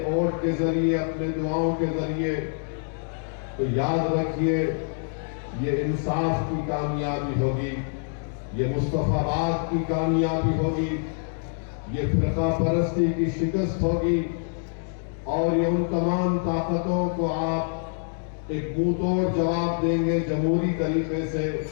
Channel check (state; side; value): silent; right; digital silence